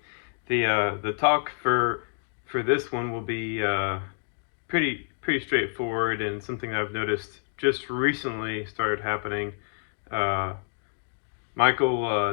The talk for this one will be pretty straightforward and something I've noticed just recently started happening.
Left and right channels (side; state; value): right; silent; digital silence